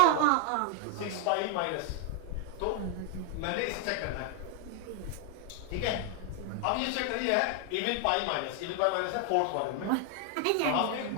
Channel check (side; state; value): both; different; correlation 0.00